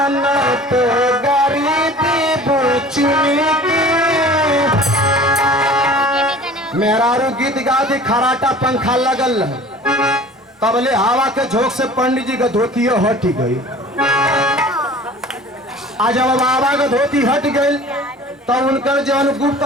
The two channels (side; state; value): both; normal; correlation 0.44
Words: न तो गरीबी बुचनी की। मेहरारू गीत गा दी खराटा पंखा लगल तबले हवा के झोंक से पंडित जी का धोती हट गई। आज जब बाबा का धोती हट गई तब उनका जौन गुप्त